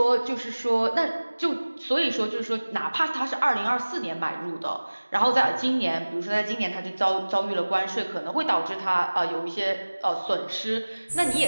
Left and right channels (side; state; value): both; inverted; correlation -1.00